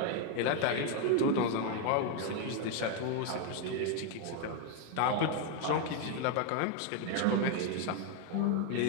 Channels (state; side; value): different; both; correlation 0.01